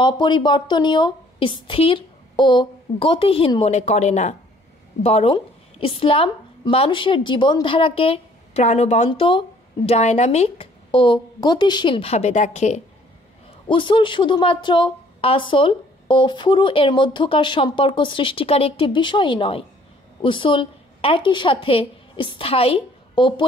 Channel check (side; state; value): both; normal; correlation 0.59